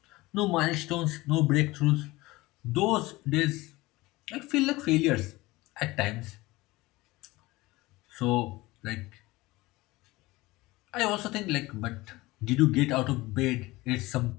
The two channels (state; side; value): quieter; right; 20.4 dB